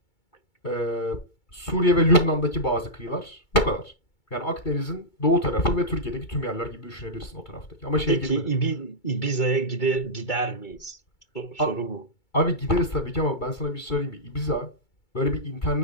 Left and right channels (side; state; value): right; late; 2.3 ms